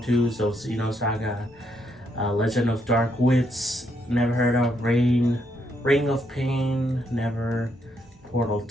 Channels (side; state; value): both; normal; correlation 0.76